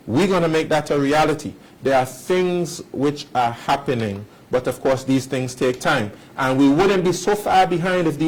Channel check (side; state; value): both; identical; correlation 1.00